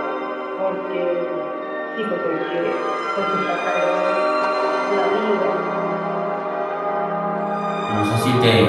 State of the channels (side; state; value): both; identical; correlation 1.00